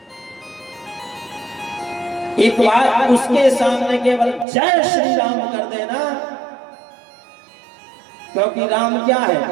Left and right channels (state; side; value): drops out; left; at 4.5 s